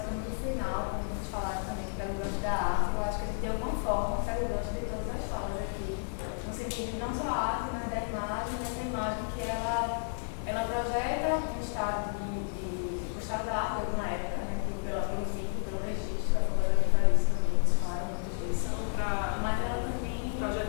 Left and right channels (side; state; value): right; silent; 57 dB below the other